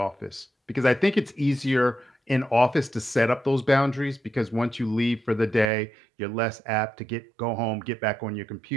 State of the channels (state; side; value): drops out; left; at 5.7 s